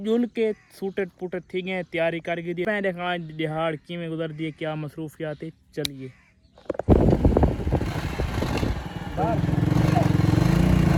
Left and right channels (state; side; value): identical; both; correlation 1.00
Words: के सूटट पुटट थी गए तैयारी करके दी मैं देखा दिहाड़ किमें गुजर दिए क्या मसरूफियात है। चलिए